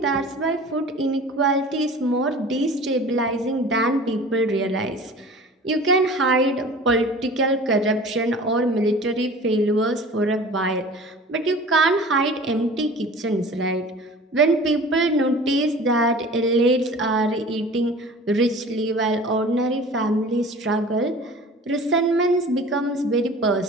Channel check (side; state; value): both; normal; correlation 0.42